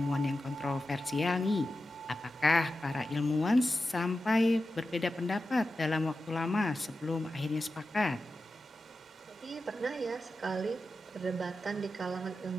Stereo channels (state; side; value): normal; both; correlation 0.92